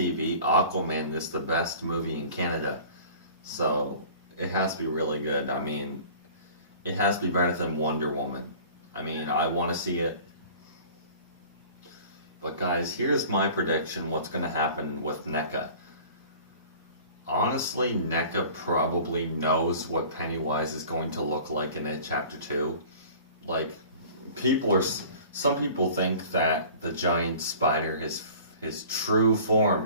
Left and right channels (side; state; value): both; inverted; correlation -0.45